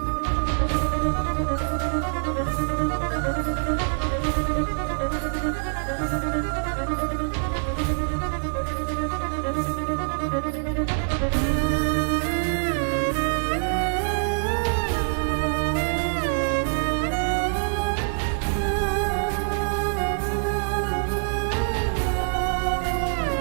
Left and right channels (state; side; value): silent; left; 62 dB below the other